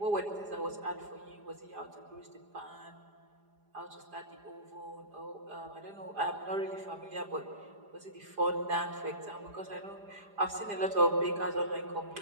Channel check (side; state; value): left; late; 4.9 ms